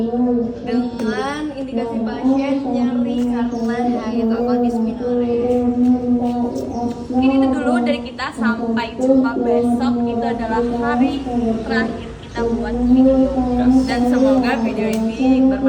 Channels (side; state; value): both; identical; correlation 1.00